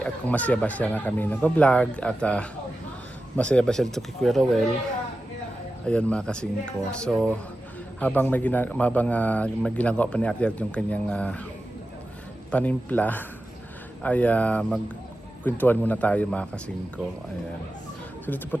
at kung masaya ba siya na kami nag-vlog at masaya ba siya dito kay Kuya Rowell. Ayan mga kasingko. So habang may ginagawa pa ni Ate Janet yung kanyang panimpla ay magkwentuhan muna tayo mga kasingko. Ayan. So dito po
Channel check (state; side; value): normal; both; correlation 0.92